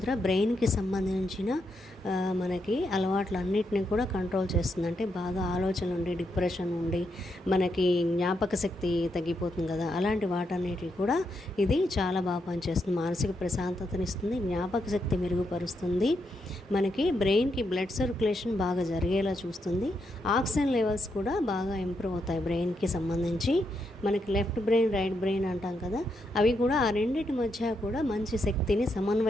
బ్రెయిన్కి సంబంధించిన మనకి అలవాట్లన్నిటిని కూడా కంట్రోల్ చేస్తుంది. అంటే బాగా ఆలోచనలు ఉండి, డిప్రెషన్ ఉండి, మనకి జ్ఞాపక శక్తి తగ్గిపోతుంది కదా, అలాంటి వాటన్నిటికి కూడా ఇది చాలా బాగా పనిచేస్తుంది. మానసిక ప్రశాంతతనిస్తుంది, జ్ఞాపక శక్తి మెరుగుపరుస్తుంది, మనకి బ్రెయిన్కి బ్లడ్ సర్క్యులేషన్ బాగా జరిగేలా చూస్తుంది. ఆక్సిజన్ లెవెల్స్ కూడా బాగా ఇంప్రూవ్ అవుతాయి బ్రెయిన్కి సంబంధించి. మనకి లెఫ్ట్ బ్రెయిన్, రైట్ బ్రెయిన్ అంటాం కదా, అవి కూడా ఆ రెండింటి మధ్య కూడా మంచి శక్తిని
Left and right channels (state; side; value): normal; both; correlation 0.81